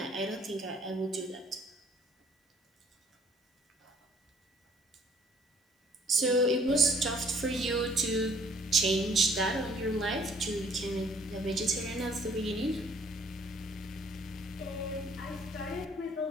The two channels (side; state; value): both; normal; correlation 0.59